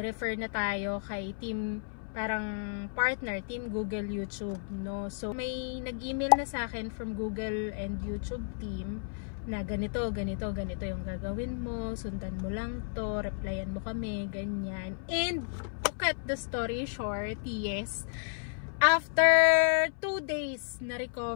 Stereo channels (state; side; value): silent; right; 56 dB below the other